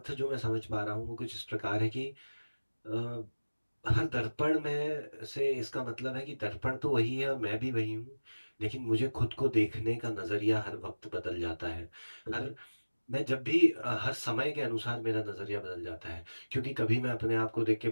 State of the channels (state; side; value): inverted; both; correlation -1.00